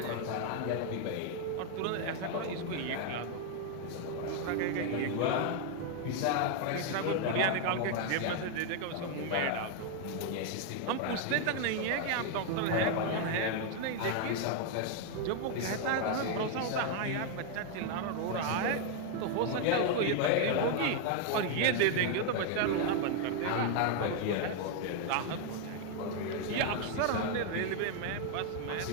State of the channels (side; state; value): both; different; correlation 0.01